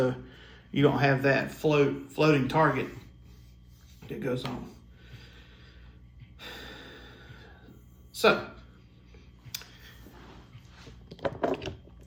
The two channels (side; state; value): both; identical; correlation 1.00